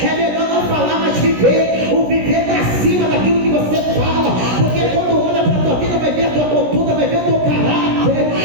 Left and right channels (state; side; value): late; left; 16 ms